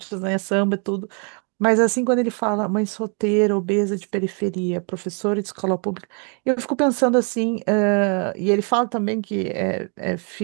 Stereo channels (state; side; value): quieter; left; 38.5 dB